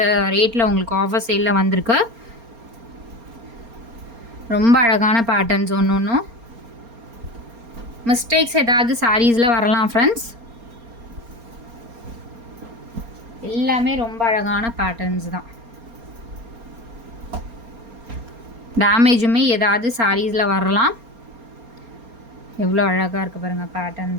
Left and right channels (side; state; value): left; late; 4.3 ms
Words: ரேட்டில் உங்களுக்கு ஆஃபர் சேலில் வந்திருக்கு. ரொம்ப அழகான பேட்டர்ன்ஸ். ஒன்றும் மிஸ்டேக்ஸ் ஏதாவது சாரீஸில் வரலாம் ஃப்ரெண்ட்ஸ். எல்லாமே ரொம்ப அழகான பேட்டர்ன்ஸ் தான். டேமேஜுமே ஏதாவது சாரீஸில் வரலாம். எவ்வளோ அழகாக இருக்குது பாருங்கள்